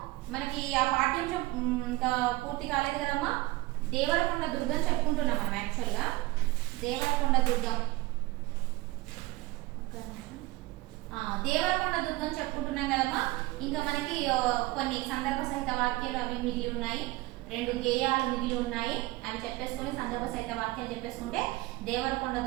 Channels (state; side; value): quieter; left; 19.9 dB